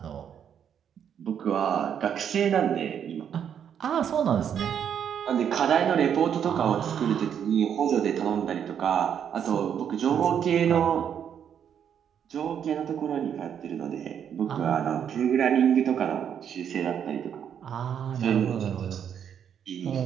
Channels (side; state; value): left; quieter; 8.5 dB